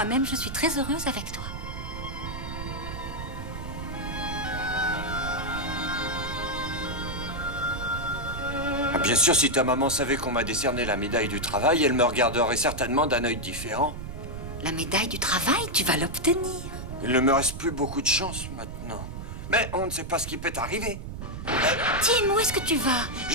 je suis très heureuse avec toi. Ah, bien sûr, si ta maman savait qu'on m'a décerné la médaille du travail, elle me regarderait certainement d'un œil différent. La médaille du travail, tu vas l'obtenir. Il ne me reste plus beaucoup de chance maintenant. Mais on ne sait pas ce qui peut arriver. Tim, où est-ce que tu vas?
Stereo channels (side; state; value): right; noise; rumble, 8 dB below the sound